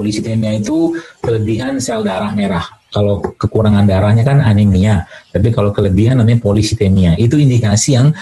itu kelebihan sel darah merah. Kalau kekurangan darahnya kan anemia, tapi kalau kelebihan namanya polisitemia. Itu indikasi yang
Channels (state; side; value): identical; both; correlation 1.00